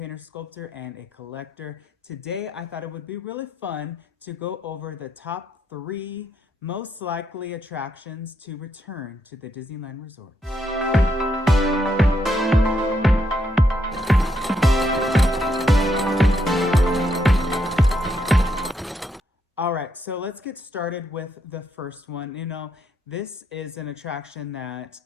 sculptor, and a collector. Today, I thought it would be really fun to go over the top 3 most likely attractions to return to the Disneyland Resort. All right, so let's get started with the first one. This is an attraction that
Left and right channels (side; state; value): both; normal; correlation 0.77